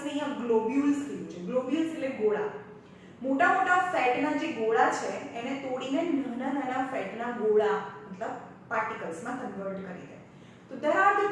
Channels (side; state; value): both; identical; correlation 1.00